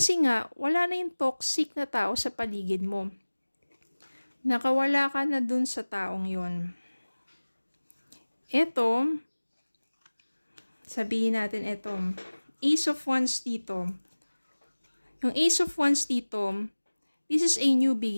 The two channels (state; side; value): inverted; both; correlation -1.00